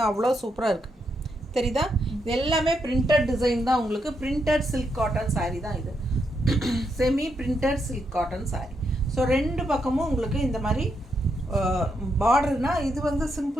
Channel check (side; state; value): both; normal; correlation 0.80